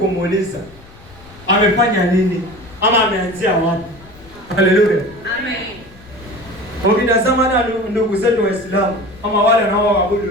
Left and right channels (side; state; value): left; noise; rumble, 23 dB below the sound